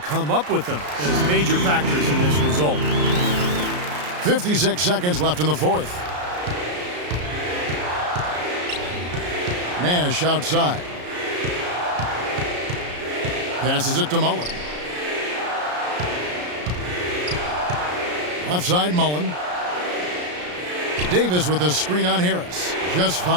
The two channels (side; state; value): left; late; 33 ms